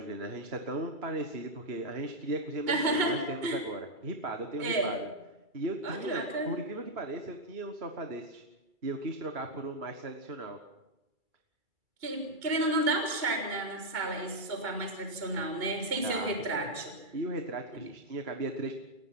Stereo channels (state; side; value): late; left; 2.3 ms